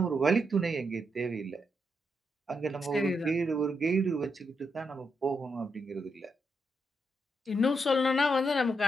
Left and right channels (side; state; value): both; normal; correlation 0.81